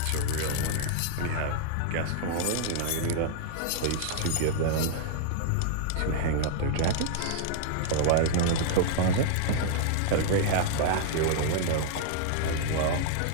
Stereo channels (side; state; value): both; different; correlation -0.01